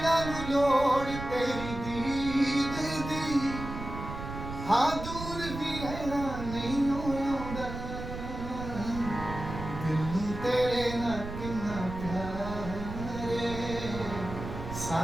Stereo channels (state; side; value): noise; right; rumble, 8 dB below the sound